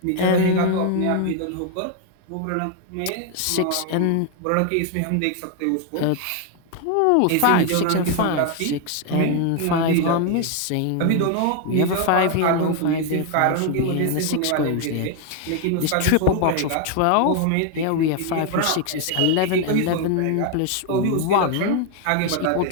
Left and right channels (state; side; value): different; both; correlation 0.00